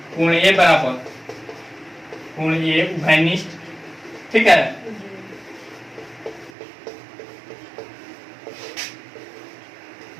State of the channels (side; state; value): left; drops out; at 6.5 s